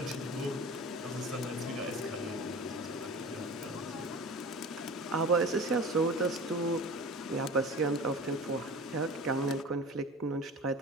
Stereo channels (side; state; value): both; normal; correlation 0.36